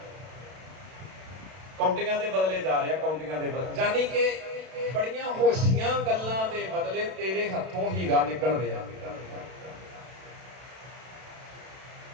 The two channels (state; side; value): late; left; 32 ms